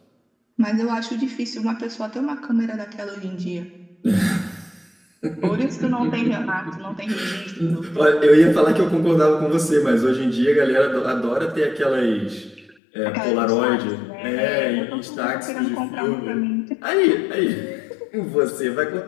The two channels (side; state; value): right; drops out; at 12.8 s